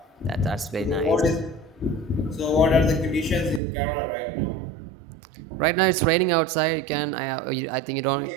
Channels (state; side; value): drops out; left; at 3.6 s